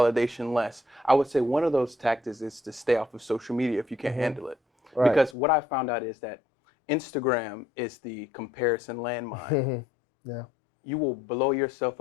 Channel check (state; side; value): drops out; right; at 5.4 s